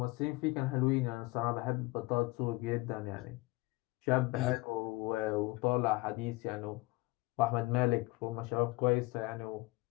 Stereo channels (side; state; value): right; quieter; 22.7 dB